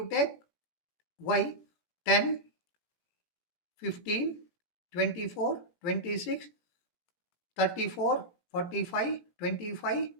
take y 10, 15, 24, 26, 34, 45, 25,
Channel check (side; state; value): right; late; 17 ms